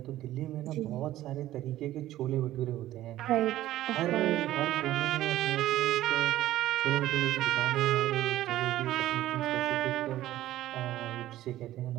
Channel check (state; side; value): quieter; left; 14.4 dB